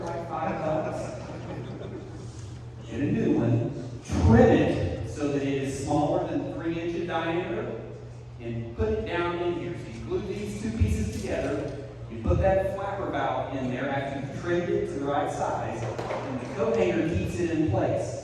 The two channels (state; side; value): identical; both; correlation 1.00